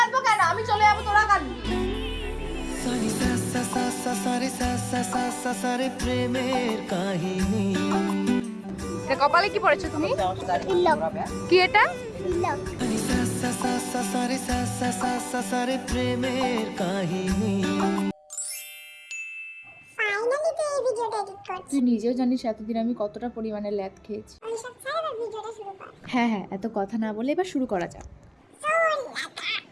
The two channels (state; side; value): identical; both; correlation 1.00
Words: কেন? আমি চলে যাবো, তোরা কাঁদবি। এটা কপালে কি পড়েছো তুমি? কি এটা? তুই নিজেও জানিস এতদিন আমি কতটা পরিমাণে ল্যাদ খেয়েছি। হ্যাঁ হ্যাঁ, এত কথা না বলে এবার শুরু করা যাক।